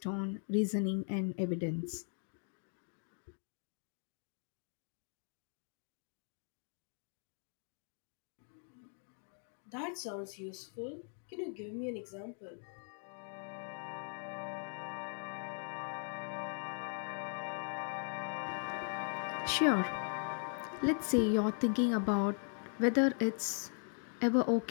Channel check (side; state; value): right; silent; 51 dB below the other